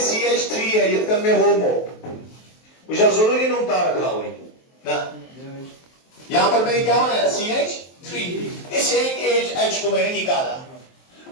है, ये तक में होमो मुझे जरूरी नहीं उतार रखा हुई ना, यहां पर मैंने क्या बनाया CH3, इस एक H को मैंने निकाला,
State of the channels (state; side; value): late; right; 23 ms